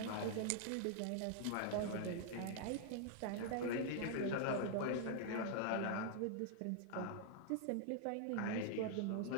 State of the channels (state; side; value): different; both; correlation -0.01